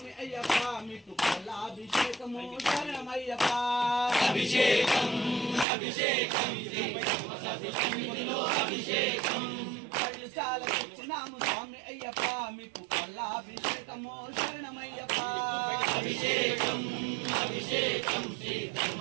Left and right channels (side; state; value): left; drops out; at 5.7 s